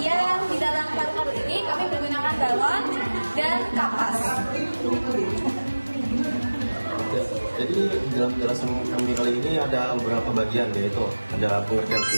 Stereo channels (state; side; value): inverted; both; correlation -1.00